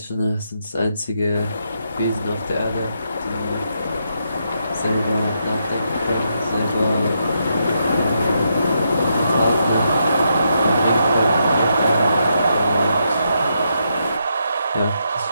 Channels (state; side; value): inverted; both; correlation -0.80